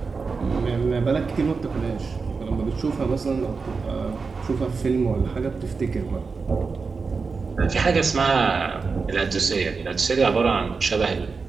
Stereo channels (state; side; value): quieter; left; 4.7 dB